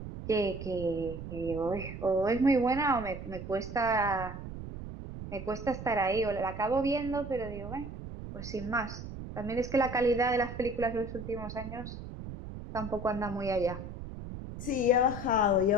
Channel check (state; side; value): noise; right; rumble, 9 dB below the sound